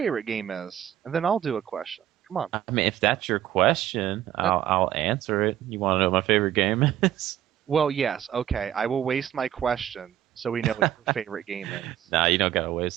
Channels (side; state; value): left; quieter; 11.6 dB